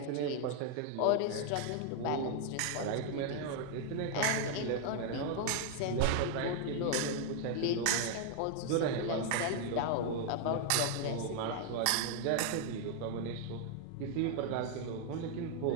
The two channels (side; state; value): both; different; correlation 0.00